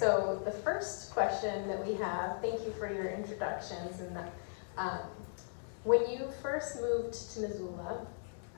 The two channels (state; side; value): silent; right; digital silence